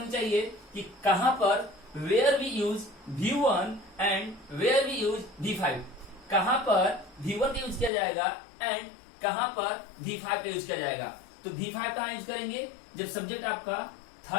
चाहिए कि कहां पर where we use V1 and where we use V5, कहां पर V1 का यूज किया जाएगा एंड कहां पर V5 का यूज किया जाएगा। तो V5 कहां यूज करेंगे, जब सब्जेक्ट आपका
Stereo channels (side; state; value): right; drops out; at 7.9 s